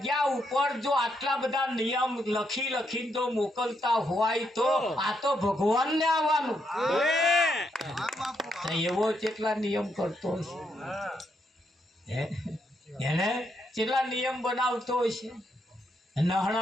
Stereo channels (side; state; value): both; normal; correlation 0.78